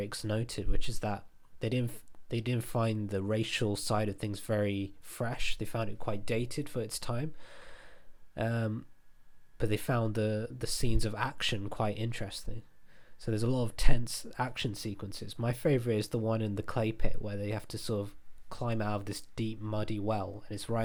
noted, which is that they didn't find the racial side of things very fresh. They found it quite dated for its time. But they found the scenes of action quite interesting. So there's a lot of tense action sequences. My favourite is the one in the clay pit where they have to sort of climb out of this deep muddy well, and it's right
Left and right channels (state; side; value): identical; both; correlation 1.00